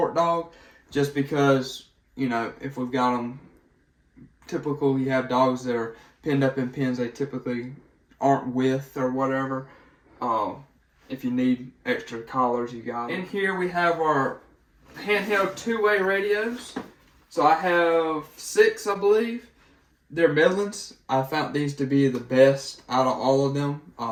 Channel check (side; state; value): both; identical; correlation 1.00